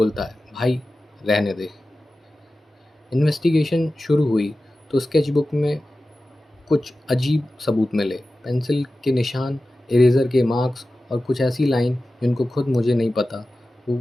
है, भाई रहने दे। इन्वेस्टिगेशन शुरू हुई तो स्केचबुक में कुछ अजीब सबूत मिले। पेंसिल के निशान, इरेज़र के मार्क्स और कुछ ऐसी लाइन जिनको खुद मुझे नहीं पता वो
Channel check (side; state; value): both; normal; correlation 0.94